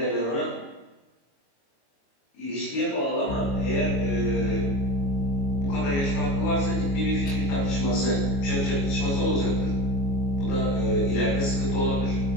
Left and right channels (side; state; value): right; late; 22 ms